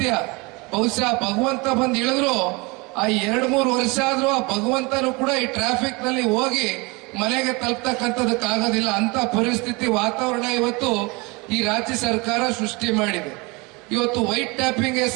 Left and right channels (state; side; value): quieter; left; 26.7 dB